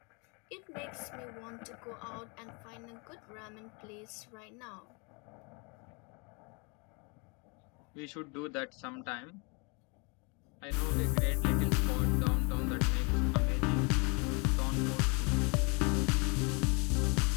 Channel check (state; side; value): quieter; right; 31.9 dB